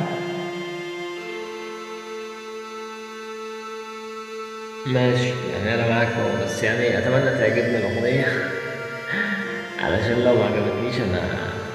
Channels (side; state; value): both; identical; correlation 1.00